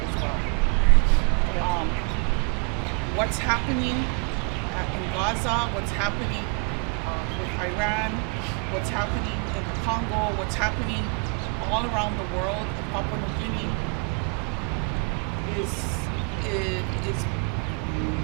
as well. What's happening in Gaza, what's happening with Iran, what's happening in the Congo, what's happening all around the world in Papua New Guinea is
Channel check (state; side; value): quieter; left; 38.3 dB